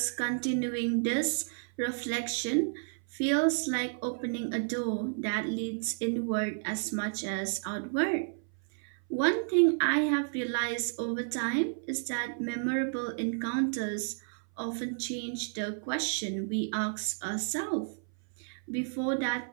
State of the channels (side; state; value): left; silent; 57 dB below the other